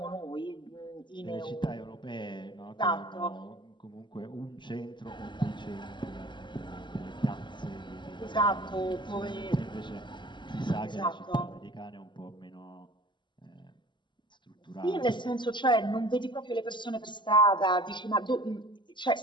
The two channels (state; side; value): late; right; 0.22 ms